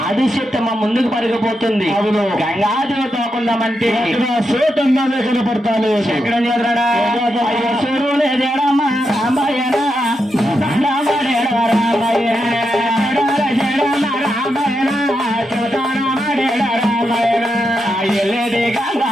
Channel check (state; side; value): normal; both; correlation 0.85